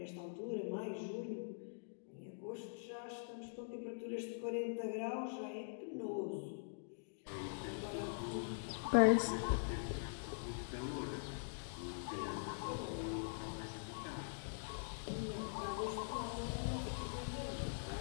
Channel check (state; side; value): silent; right; digital silence